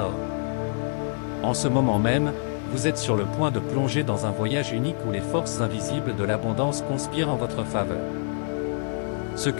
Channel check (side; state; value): right; silent; 61 dB below the other